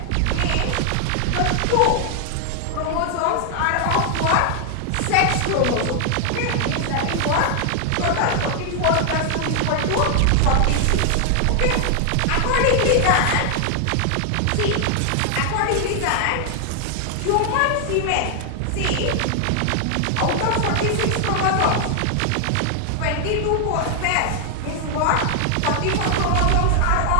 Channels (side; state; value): both; different; correlation 0.00